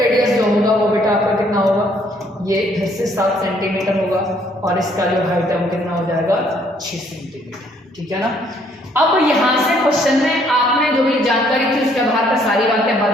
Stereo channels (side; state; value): both; normal; correlation 0.65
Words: जो होगा वो बेटा आपका कितना होगा, ये फिर से 7 सेंटीमीटर होगा और इसका जो हाइट है वो कितना हो जाएगा 6 सेंटीमीटर, ठीक है ना। अब यहां से क्वेश्चन में आपने जो भी जानकारी थी उसके आधार पर सारी बातें